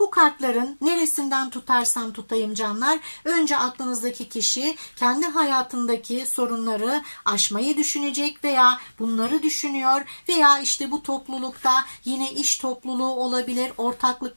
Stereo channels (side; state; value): both; inverted; correlation -1.00